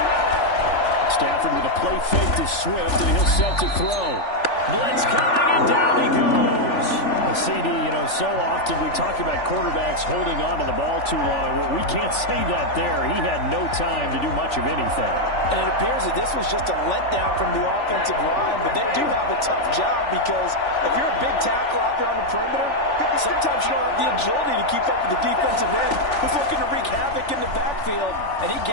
Stafford with a play fake to Swift, and he'll set to throw. Blitz coming, and down he goes. A CD, so often we talk about quarterbacks holding on to the ball too long. Well, we can't say that there. He had no time to do much of anything. And it appears that this was just a letdown from the offensive line, but they do have a tough job because if you're a big tackle out there on the perimeter, sometimes you don't have the agility to keep up with the defensive end who's looking to wreak havoc in the backfield, and he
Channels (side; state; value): right; late; 3.4 ms